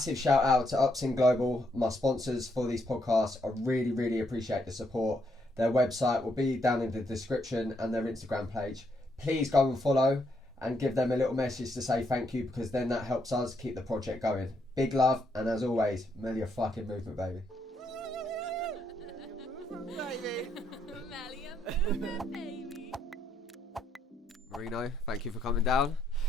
shout out to Upsin Global, my sponsors for these podcasts. I really appreciate the support. Their website will be down in the description and their Instagram page. Please go and follow and give them a little message to say thank you, because then that helps us keep the project going. Big love, and as always, Melio fucking movement, baby. Melio movement, baby. Marino, thank you for coming down.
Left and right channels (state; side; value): normal; both; correlation 0.75